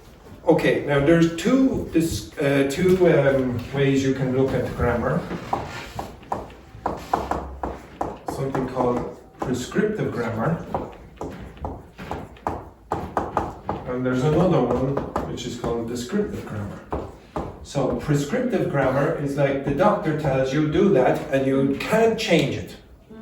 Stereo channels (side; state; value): both; identical; correlation 1.00